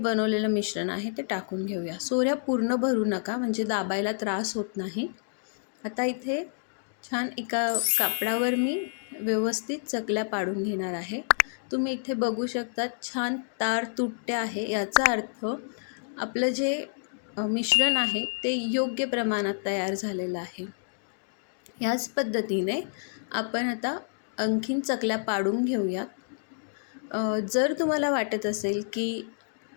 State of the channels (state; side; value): silent; right; digital silence